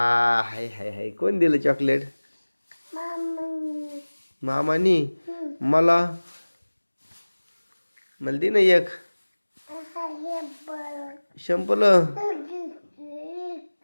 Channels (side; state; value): both; inverted; correlation -1.00